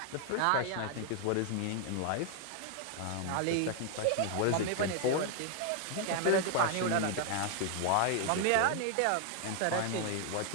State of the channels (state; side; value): different; both; correlation 0.00